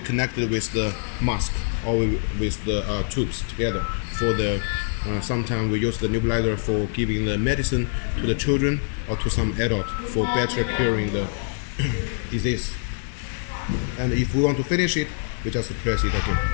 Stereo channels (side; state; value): right; silent; digital silence